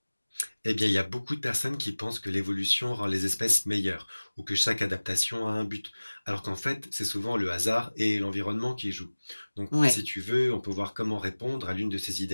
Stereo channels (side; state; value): both; inverted; correlation -1.00